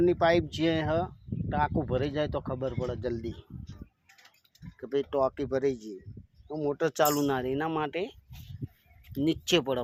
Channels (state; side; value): identical; both; correlation 1.00